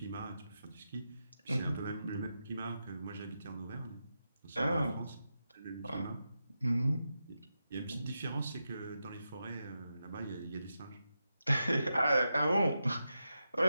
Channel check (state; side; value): inverted; both; correlation -0.88